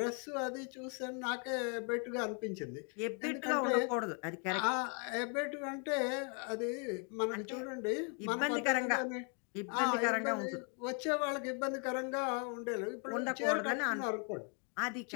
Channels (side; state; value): right; quieter; 39.0 dB